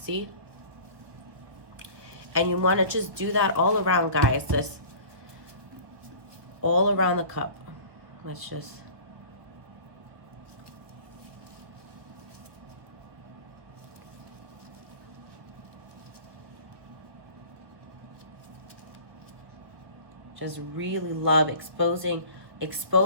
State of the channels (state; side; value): late; left; 1.2 ms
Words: And you want to just do that all around, guys, just all around the cup. Let's just really love exposing